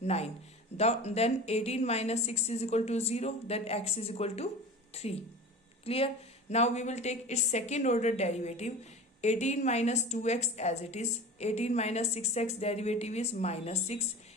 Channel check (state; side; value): normal; both; correlation 0.35